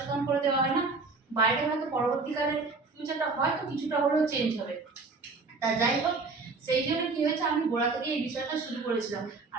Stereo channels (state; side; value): quieter; left; 4.0 dB